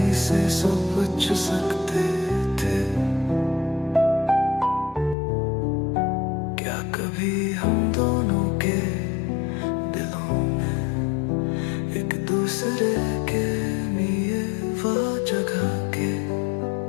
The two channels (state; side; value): drops out; right; at 5.2 s